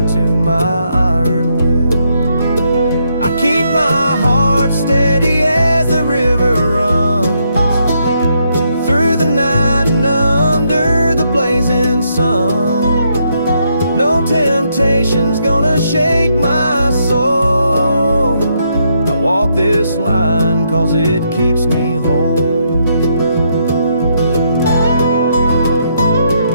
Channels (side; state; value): both; inverted; correlation -0.76